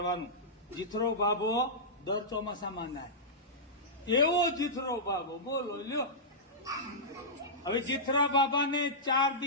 જીથરો ભાભો દર ચોમાસામાં નાય. એવો જીથરો ભાભો બોલો લ્યો. હવે જીથરા બાબાને 4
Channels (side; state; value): both; normal; correlation -0.14